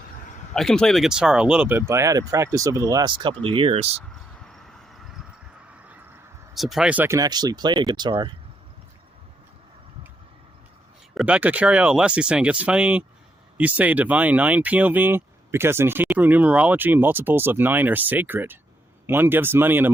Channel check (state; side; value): normal; both; correlation 0.78